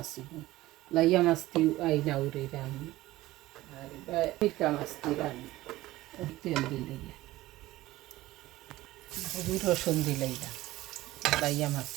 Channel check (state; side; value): quieter; left; 17.1 dB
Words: লাইয়া মাছ দি আইনা উড়ি রানমু আর মিঠা মাছ দি রানমু তেল দিলে হলুদ রসুন দিলে লাইয়া মাছ